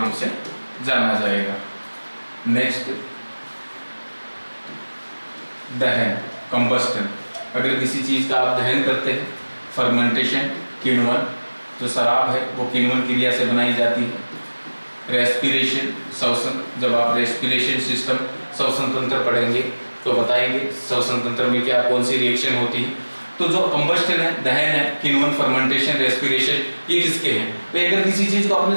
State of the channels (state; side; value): inverted; both; correlation -1.00